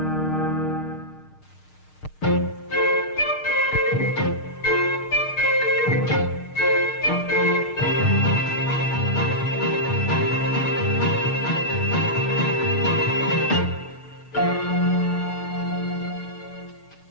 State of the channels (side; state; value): right; late; 6.4 ms